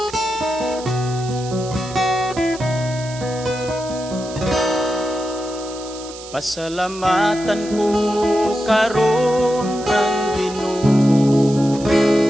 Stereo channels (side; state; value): right; noise; hiss, 15 dB below the sound